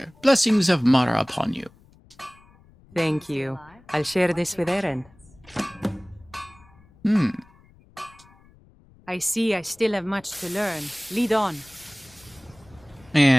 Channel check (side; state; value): left; noise; rumble, 27 dB below the sound